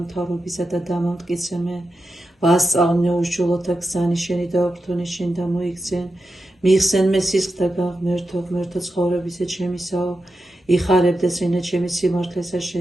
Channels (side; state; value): both; normal; correlation 0.89